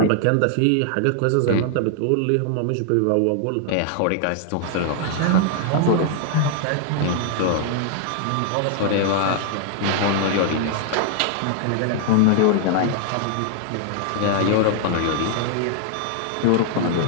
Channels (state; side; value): different; both; correlation 0.00